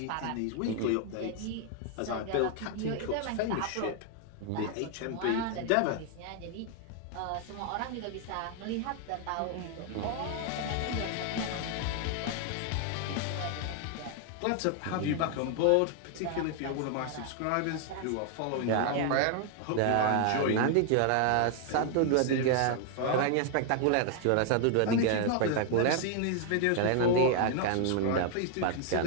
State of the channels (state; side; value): different; both; correlation 0.00